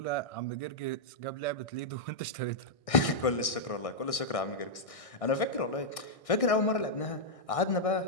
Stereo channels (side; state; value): right; late; 1.6 ms